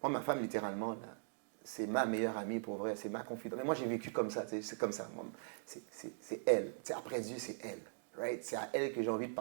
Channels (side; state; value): left; silent; digital silence